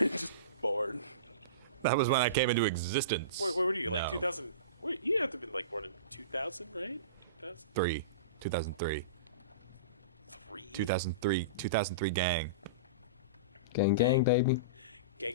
born. That was when I came into existence. Where were you? Like No. 2000? Wait, you have to have been like born in 2000, right? 3. 2003. 2003 gang. Gang, gang, baby.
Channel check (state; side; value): inverted; both; correlation -0.31